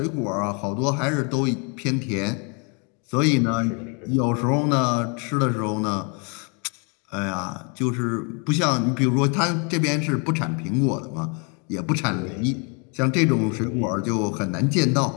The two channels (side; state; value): right; quieter; 35.5 dB